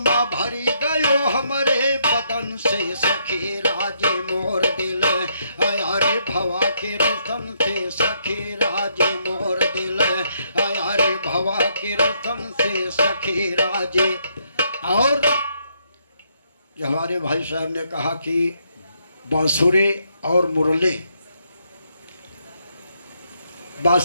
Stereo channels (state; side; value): inverted; both; correlation -0.74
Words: भरी गयो हमारे बदन से सखी राजे मोर दिल। अरे भवा के रसन से सखी राजे मोर दिल, अरे भवा के रसन से सखी राजे। और जो हमारे भाई साहब ने कहा कि बांसुरी और मुरली,